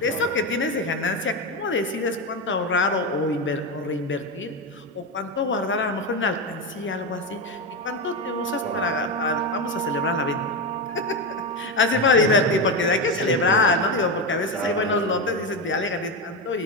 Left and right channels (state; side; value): normal; both; correlation 0.13